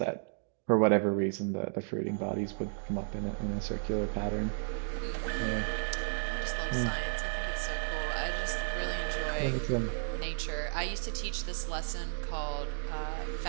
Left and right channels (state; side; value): silent; left; digital silence